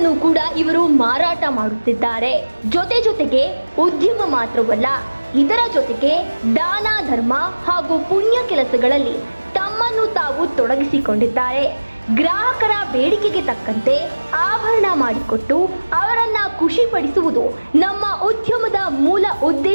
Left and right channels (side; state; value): both; inverted; correlation -1.00